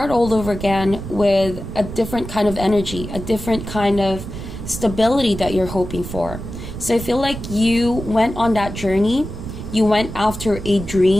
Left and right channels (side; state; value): right; noise; rumble, 9 dB below the sound